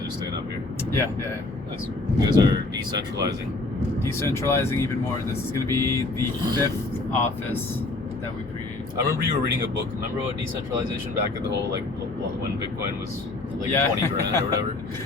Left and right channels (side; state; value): right; quieter; 3.1 dB